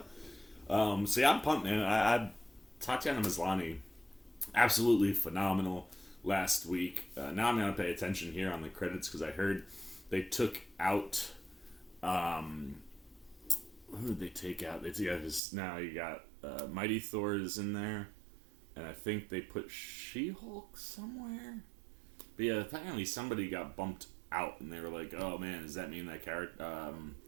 So yeah, I'm pumped, man. Tatiana Maslany, absolutely phenomenal last week. Now I'm going to pay attention here on the credits because I heard they took out... who did they take out? Now you got Mighty Thor is in there, and I think they put She-Hulk somewhere. But yeah, apparently somebody got bumped out, and they were like, "Oh man, does that mean that character?"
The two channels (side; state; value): left; drops out; at 15.4 s